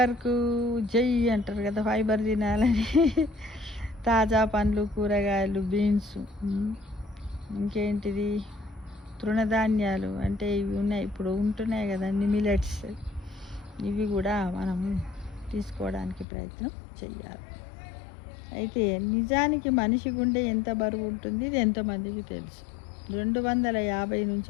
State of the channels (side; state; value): right; drops out; at 16.2 s